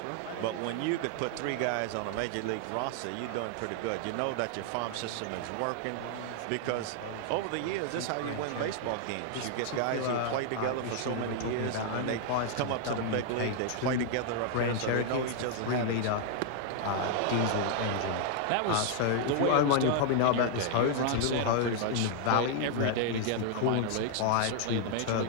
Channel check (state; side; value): different; both; correlation 0.00